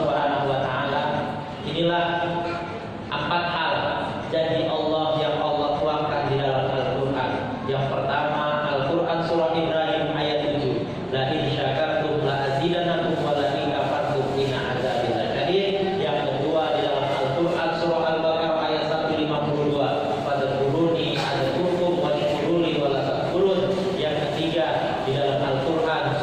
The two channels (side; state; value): both; identical; correlation 1.00